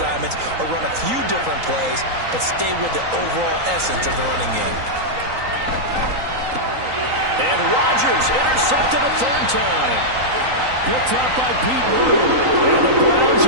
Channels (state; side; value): late; left; 3.9 ms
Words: or run a few different plays, but stay with the overall essence of the running game. And Rodgers intercepted a third time. Picked up by Pete Wood. And the Browns